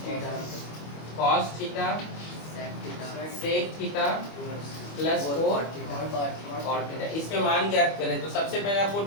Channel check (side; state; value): right; late; 25 ms